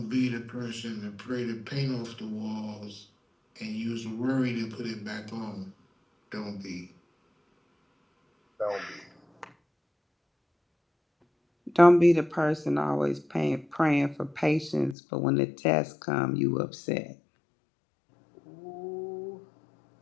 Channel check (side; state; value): right; drops out; at 15.0 s